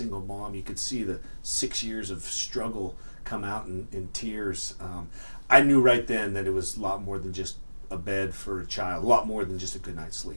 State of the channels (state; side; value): inverted; both; correlation -1.00